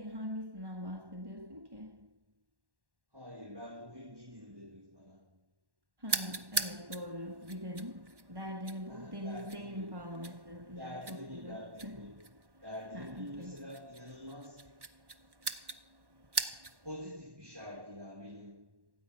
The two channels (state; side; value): late; left; 1.1 ms